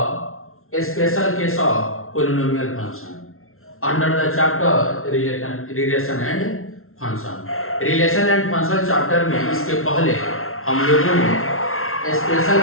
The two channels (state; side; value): late; right; 0.62 ms